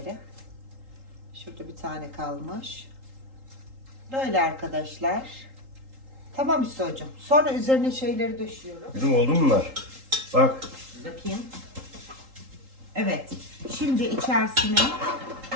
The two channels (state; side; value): late; left; 3.8 ms